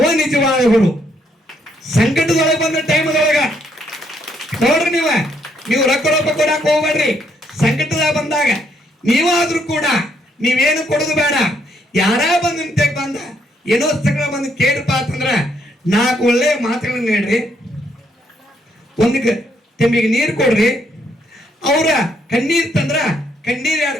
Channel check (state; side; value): normal; both; correlation 0.72